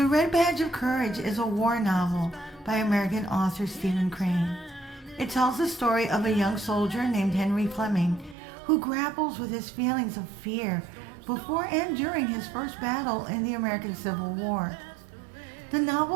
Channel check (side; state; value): left; drops out; at 8.3 s